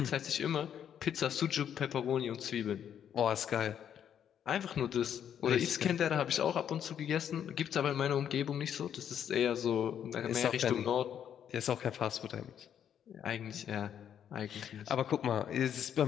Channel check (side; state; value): right; quieter; 9.1 dB